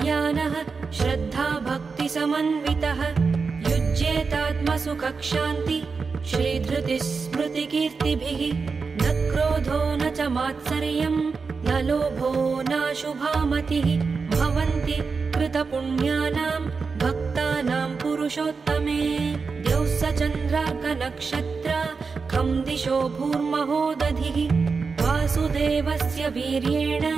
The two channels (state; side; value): quieter; left; 4.8 dB